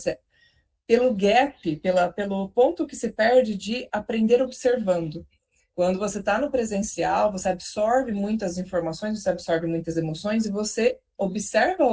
pelo gap, pelo ponto que se perde de aprender observando. Quando você está no presencial, você absorve muitas informações, você absorve muitas emoções e você observa a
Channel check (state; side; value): identical; both; correlation 1.00